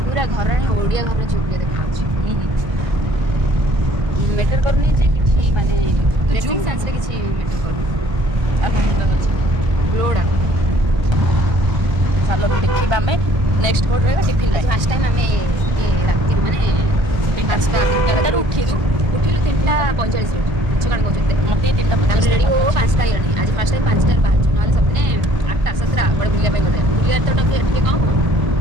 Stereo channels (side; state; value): left; late; 1.5 ms